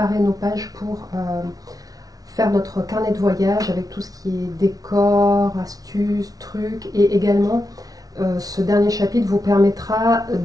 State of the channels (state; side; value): late; left; 0.18 ms